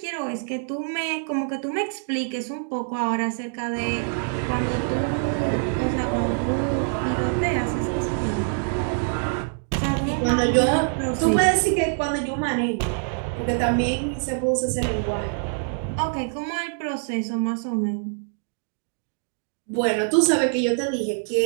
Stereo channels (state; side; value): silent; left; digital silence